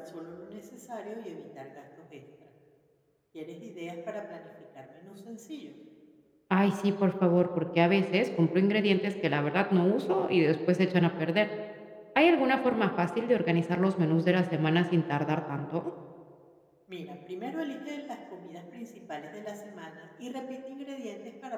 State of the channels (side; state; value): both; identical; correlation 1.00